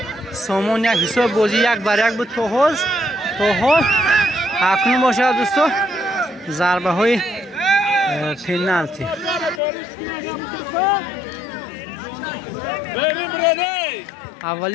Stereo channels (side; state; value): right; drops out; at 9.6 s